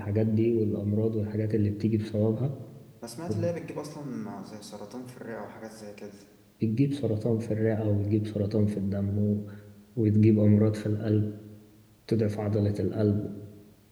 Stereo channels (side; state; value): both; identical; correlation 1.00